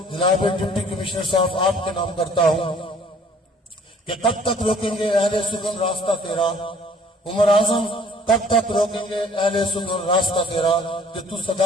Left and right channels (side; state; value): both; normal; correlation 0.55